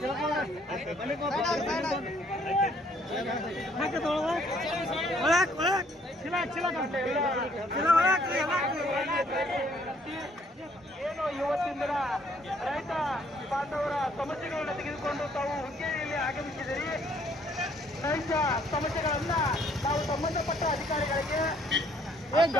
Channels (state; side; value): normal; both; correlation 0.64